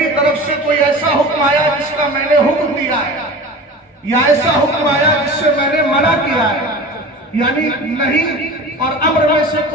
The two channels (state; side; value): normal; both; correlation 0.35